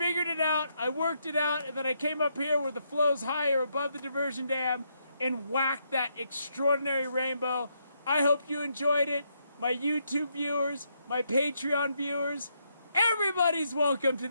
it out, I worked it out, and then I came up here where the flow's higher above the diversion dam and whacked that extraordinary rainbow. I hope you enjoyed it. My YouTube viewers, my Patreon viewers, everybody's welcome to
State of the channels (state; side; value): inverted; both; correlation -0.77